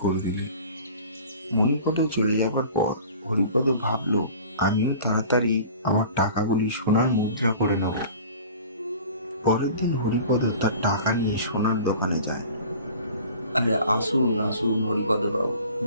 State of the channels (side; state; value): both; inverted; correlation -0.43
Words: করে দিলে। মণিপদ চলে যাবার পর হরিপদ ভাবলো, আমিও তাড়াতাড়ি আমার টাকাগুলি সোনার মুদ্রা করে নেব। পরের দিন হরিপদ তার টাকা নিয়ে সোনার দোকানে যায়। আরে আসুন আসুন হরিপদ বাবু,